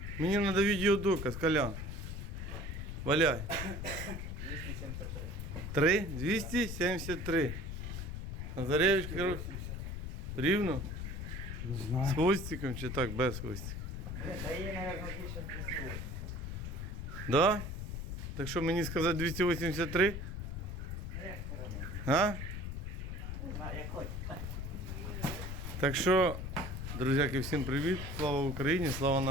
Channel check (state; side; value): noise; left; rumble, 5 dB below the sound